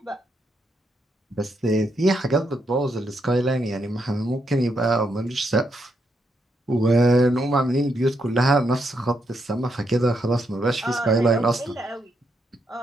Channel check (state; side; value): normal; both; correlation 0.79